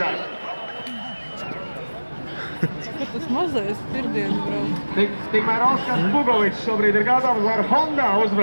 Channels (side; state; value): both; inverted; correlation -1.00